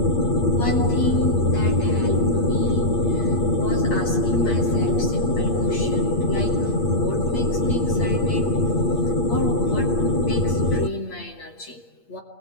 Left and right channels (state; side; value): late; right; 8.5 ms